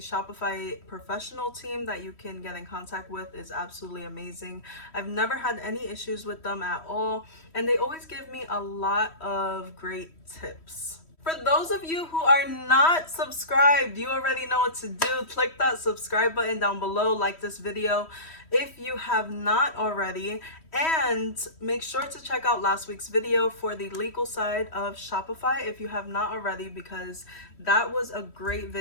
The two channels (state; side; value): late; right; 3.1 ms